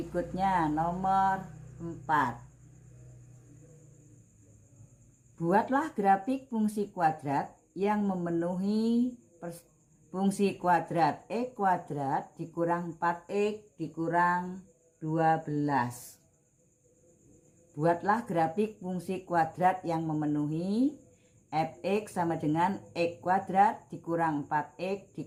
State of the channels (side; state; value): both; identical; correlation 1.00